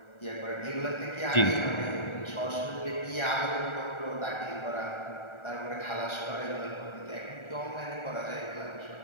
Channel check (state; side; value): late; right; 1.4 ms